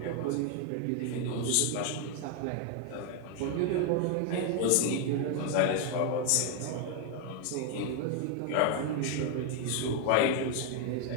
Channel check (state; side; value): different; both; correlation 0.01